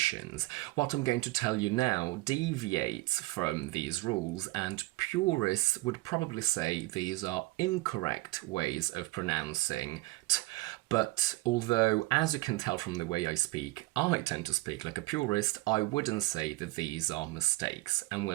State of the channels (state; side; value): quieter; left; 20.5 dB